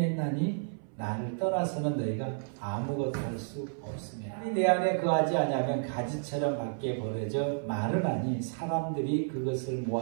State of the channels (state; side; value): silent; left; 57 dB below the other